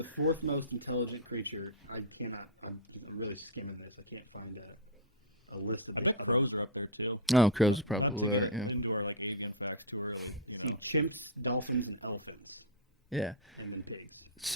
fourth most intelligent creature. I'm really skimming this. I can't find a list of it. I think crows are up there too. Oh, crows probably are. Yeah. Chimps, dolphins, and elephants. Yeah. And then pigs.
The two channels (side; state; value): both; normal; correlation -0.03